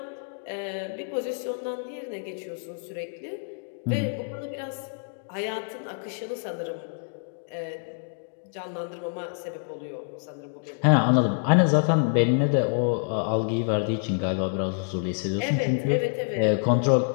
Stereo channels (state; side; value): silent; right; digital silence